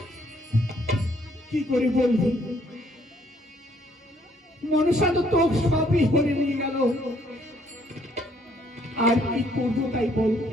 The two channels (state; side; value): normal; both; correlation 0.66